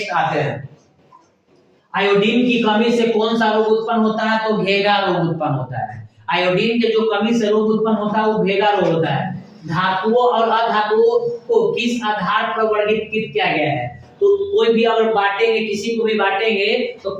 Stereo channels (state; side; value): identical; both; correlation 1.00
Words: आते हैं, आयोडीन की कमी से कौन सा रोग उत्पन्न होता है? तो भेगा रोग उत्पन्न होता है। आयोडीन के जो कमी से रोग उत्पन्न होता है वो भेगा रोग होता है। धातुओं और अधातुओं को किस आधार पर वर्गीकृत किया गया है? तो कोई भी अगर बांटेंगे, किसी को भी बांटेंगे तो